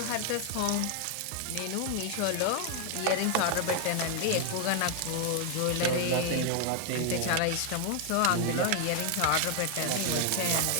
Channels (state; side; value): different; both; correlation 0.00